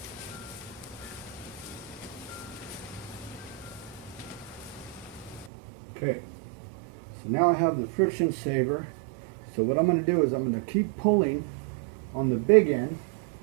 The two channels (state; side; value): drops out; left; at 5.5 s